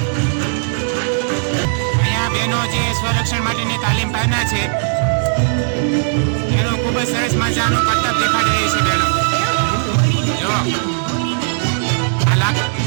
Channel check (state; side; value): silent; left; digital silence